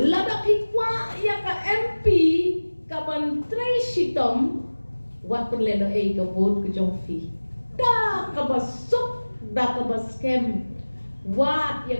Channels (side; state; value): both; inverted; correlation -1.00